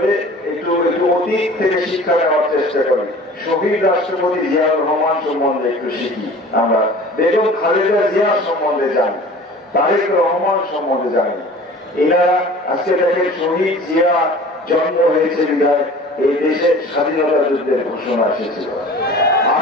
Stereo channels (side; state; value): both; normal; correlation 0.43